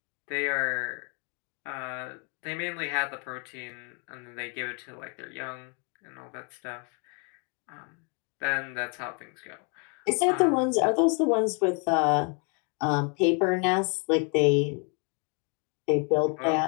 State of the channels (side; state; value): right; quieter; 36.2 dB